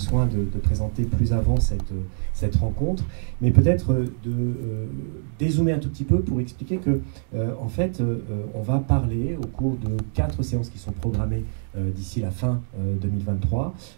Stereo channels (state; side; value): silent; left; digital silence